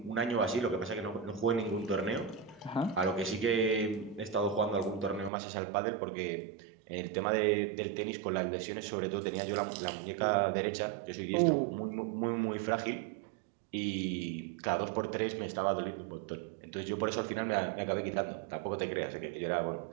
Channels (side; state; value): left; drops out; at 5.3 s